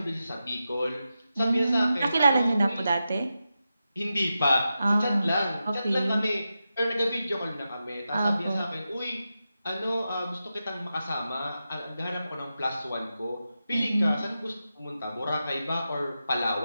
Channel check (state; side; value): inverted; both; correlation -0.90